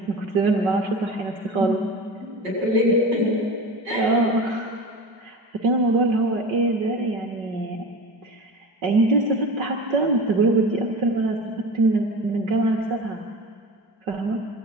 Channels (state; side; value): late; left; 5.3 ms